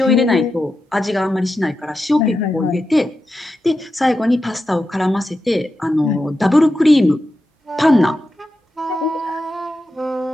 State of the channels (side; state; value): both; normal; correlation 0.89